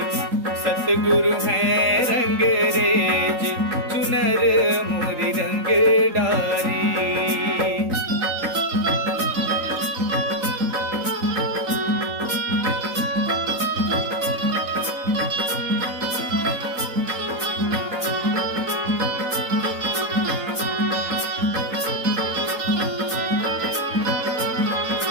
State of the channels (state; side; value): late; left; 3.8 ms